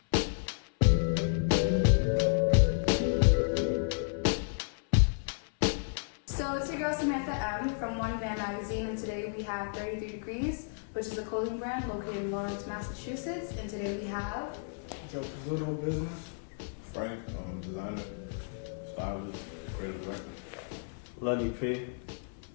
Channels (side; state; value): right; silent; 56 dB below the other